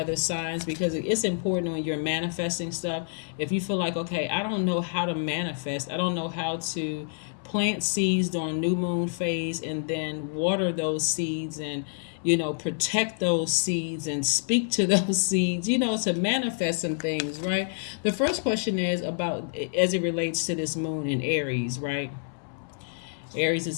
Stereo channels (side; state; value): right; silent; 60 dB below the other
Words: signs, because it's important when you're manifesting stuff. If you feel like, okay, I don't know how to manifest, I don't know how to plant seeds during new moon phase and then water those seeds and protect those seeds and speak to those seeds, to manifest some things, right? The first question is about, as it relates to this moon in Aries, right? Aries